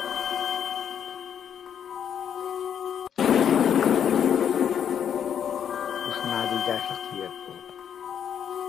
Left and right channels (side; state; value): right; quieter; 8.6 dB